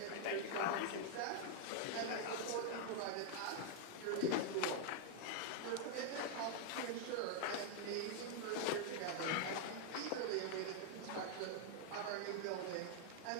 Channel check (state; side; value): different; both; correlation 0.00